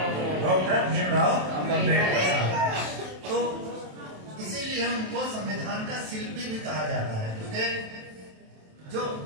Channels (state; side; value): late; left; 27 ms